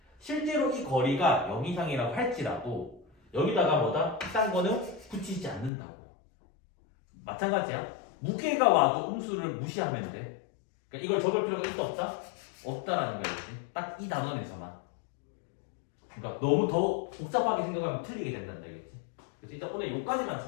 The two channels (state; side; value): drops out; right; at 5.7 s